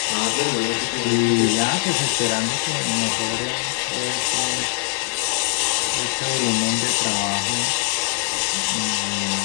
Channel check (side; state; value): right; silent; digital silence